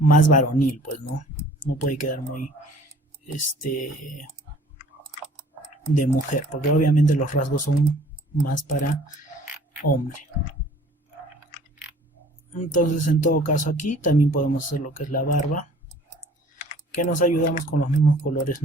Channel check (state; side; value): normal; both; correlation 0.52